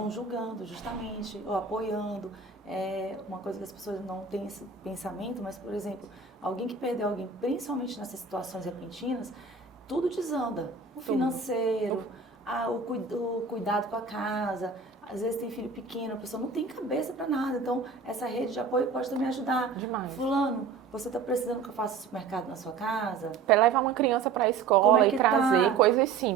julgando, justamente, ou apoiando. É uma coisa que as pessoas não têm esse pensamento, mas, por exemplo, alguém que perdeu alguém, principalmente nessas situações repentinas, tudo desanda. O financeiro, o cuidado com a casa. Às vezes tem filho pequeno, a pessoa não tem cabeça para nada. Então, essa rede de apoio pode também ajudar. Demais. Fulano, você está precisando que eu faça supermercado na sua casa? Levar uma criança para a escola e trazer coisas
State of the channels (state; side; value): quieter; left; 5.2 dB